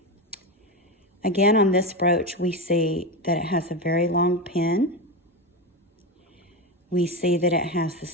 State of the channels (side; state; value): both; normal; correlation 0.16